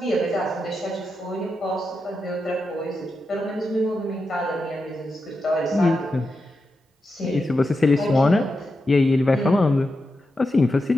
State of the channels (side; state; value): both; normal; correlation 0.88